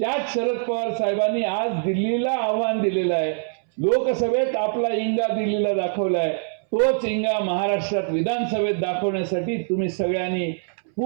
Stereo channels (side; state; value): left; silent; 63 dB below the other